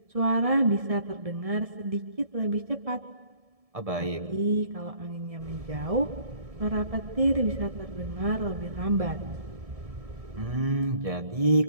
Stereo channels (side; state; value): left; late; 1.7 ms